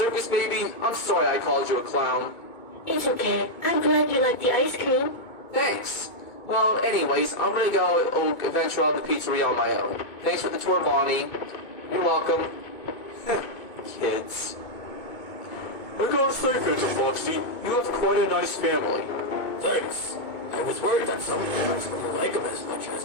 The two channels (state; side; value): late; right; 2.2 ms